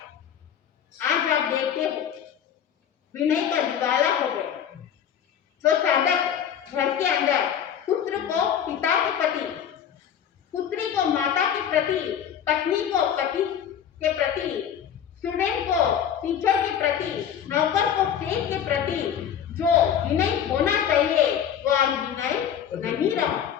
आज आप देखते हो विनय का दिवाला हो गया। जो साधक घर के अंदर पुत्र को पिता के प्रति, पुत्री को माता के प्रति, पत्नी को पति के प्रति, स्टूडेंट को टीचर के प्रति, नौकर को सेठ के प्रति जो विनय होना चाहिए वो आज विनय नहीं रहा।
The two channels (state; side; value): quieter; right; 8.9 dB